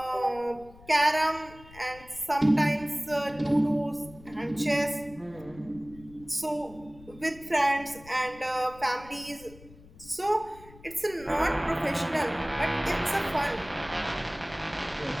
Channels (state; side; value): noise; left; rumble, 21 dB below the sound